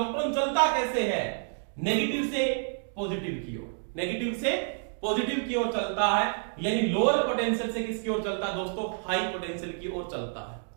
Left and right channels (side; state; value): left; silent; digital silence